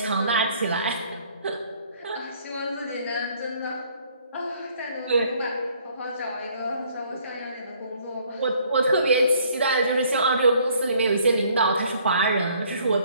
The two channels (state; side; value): inverted; both; correlation -0.61